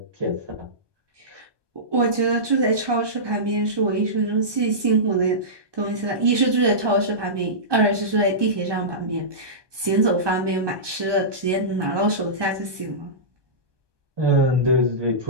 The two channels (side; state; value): left; late; 1.2 ms